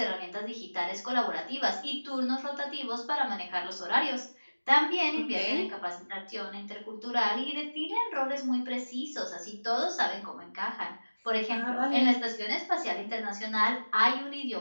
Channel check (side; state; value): both; inverted; correlation -1.00